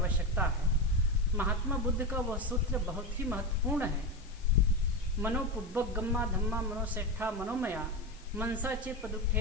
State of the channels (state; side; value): noise; left; hiss, 24 dB below the sound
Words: है। महात्मा बुद्ध का वह सूत्र बहुत ही महत्वपूर्ण है। मनो पुब्बक गम्मा धम्मा मनोसेठा मनोमया मनसा चे